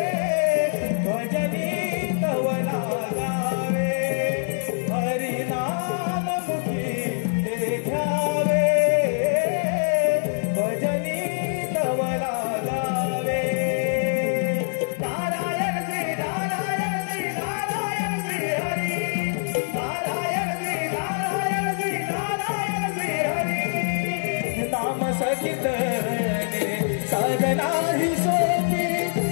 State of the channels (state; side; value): silent; right; 62 dB below the other